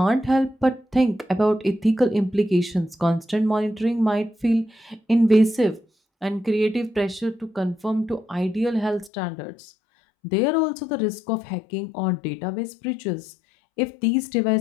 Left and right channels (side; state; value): right; drops out; at 9.1 s